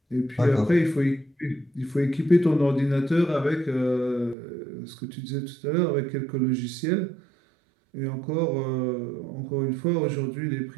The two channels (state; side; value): drops out; left; at 4.4 s